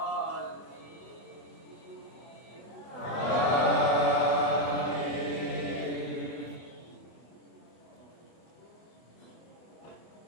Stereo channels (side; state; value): right; late; 24 ms